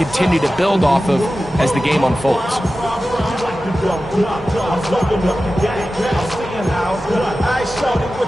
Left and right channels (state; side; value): normal; both; correlation 0.94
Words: to build off of as the game unfolds.